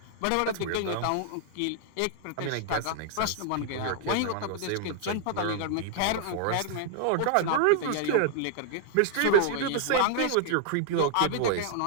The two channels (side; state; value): both; different; correlation -0.01